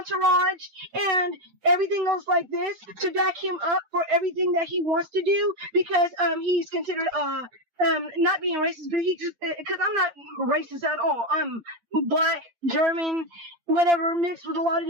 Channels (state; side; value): late; left; 8.6 ms